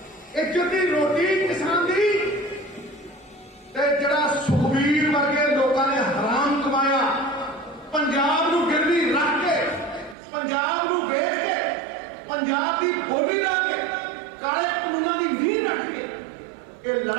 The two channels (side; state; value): left; drops out; at 10.2 s